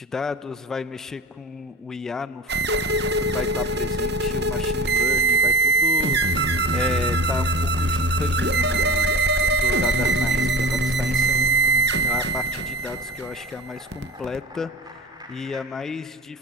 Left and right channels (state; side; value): normal; both; correlation 0.34